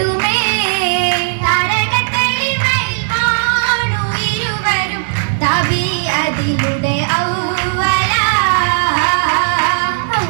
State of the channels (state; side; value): silent; left; digital silence